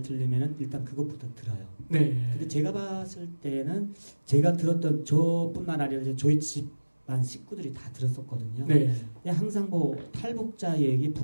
들리면은 일단 그것부터 들어요. 네. 근데 제가 봤을 때는 제가 들었던 저뿐만 아니라 이제 저희 집안 식구들이 다 들었었거든요. 네. 항상 뭐 탈북자 얘기,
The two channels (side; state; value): both; inverted; correlation -1.00